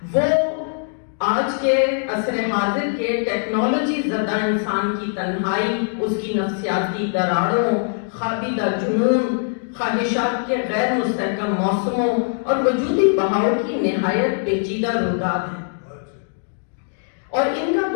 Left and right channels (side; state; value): right; silent; digital silence